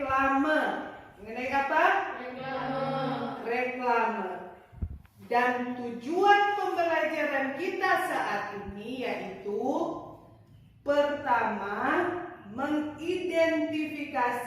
Mengenai apa? Reklame. Dan tujuan pembelajaran kita saat ini yaitu pertama,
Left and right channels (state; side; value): identical; both; correlation 1.00